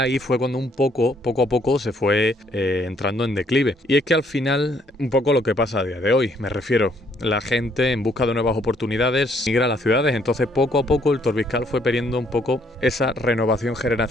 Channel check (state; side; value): normal; both; correlation 0.67